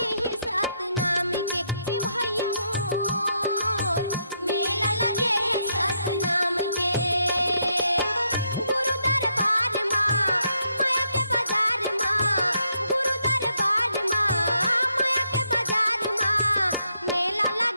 है सात नाम के ए भैया मोर मेला लगे है सात नाम के गुरु दरबार माँ माया के बाजार माँ गुरु दरबार माँ माया के बाजार माँ मेला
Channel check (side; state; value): both; inverted; correlation -0.77